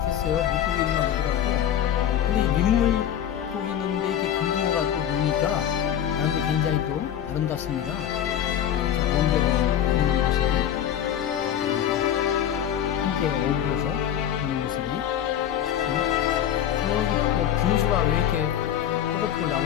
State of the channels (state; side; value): quieter; right; 10.2 dB